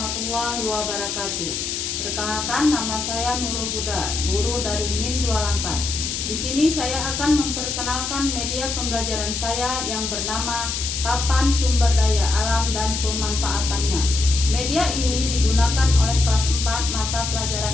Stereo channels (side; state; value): left; noise; hiss, 3 dB below the sound